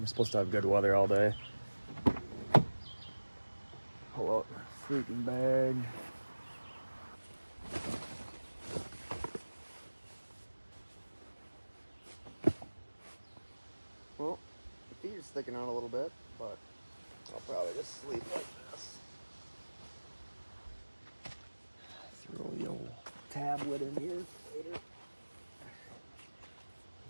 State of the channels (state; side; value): inverted; both; correlation -1.00